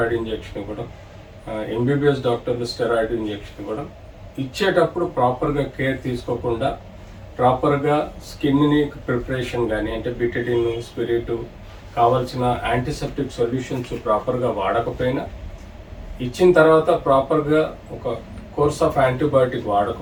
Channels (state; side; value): identical; both; correlation 1.00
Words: ఇంజెక్షన్ ఇవ్వడం, ఎంబీబీఎస్ డాక్టర్లు స్టెరాయిడ్ ఇంజెక్షన్ ఇవ్వడం, ఇచ్చేటప్పుడు ప్రాపర్గా కేర్ తీసుకోకుండా ప్రాపర్గా స్కిన్ని ప్రిపరేషన్ కానీ, అంటే బిటడిన్, స్పిరిట్, కావాల్సిన యాంటీసెప్టిక్ సొల్యూషన్స్ ప్రాపర్గా వాడకపోయినా, ఇచ్చిన తర్వాత ప్రాపర్గా ఒక కోర్స్ ఆఫ్ యాంటీబయాటిక్